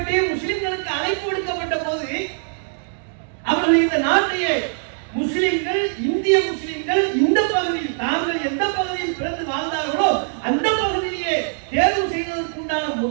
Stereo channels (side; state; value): left; silent; digital silence